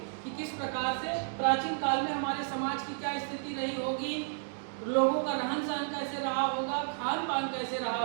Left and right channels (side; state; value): left; silent; digital silence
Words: कि किस प्रकार से प्राचीन काल में हमारे समाज की क्या स्थिति रही होगी, लोगों का रहन सहन कैसे रहा होगा, खान पान कैसे रहा